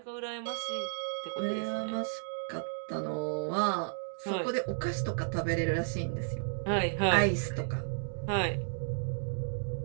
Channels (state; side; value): silent; left; digital silence